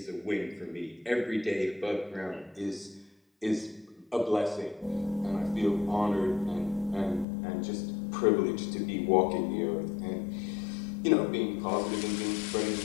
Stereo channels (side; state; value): right; drops out; at 7.2 s